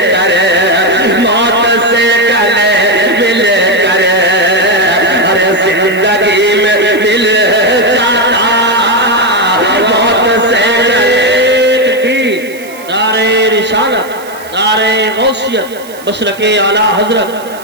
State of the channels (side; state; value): right; noise; hiss, 20 dB below the sound